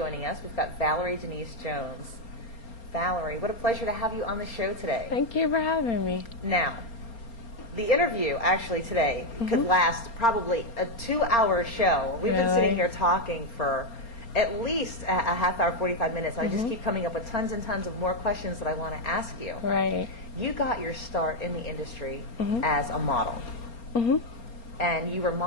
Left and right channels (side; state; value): right; late; 4.3 ms